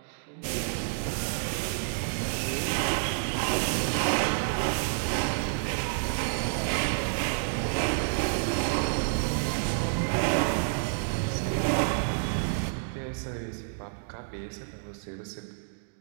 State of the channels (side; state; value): left; silent; digital silence